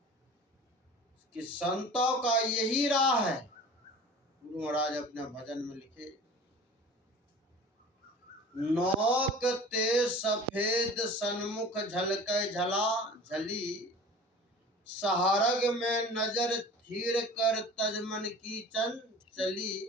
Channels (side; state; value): both; normal; correlation 0.41